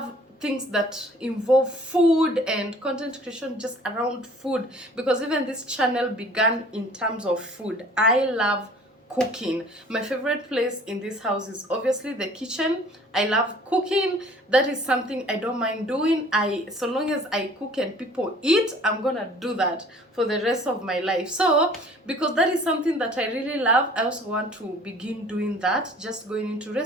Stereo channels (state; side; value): normal; both; correlation 0.51